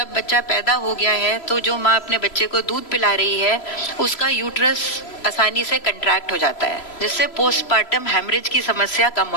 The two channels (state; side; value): late; right; 3.0 ms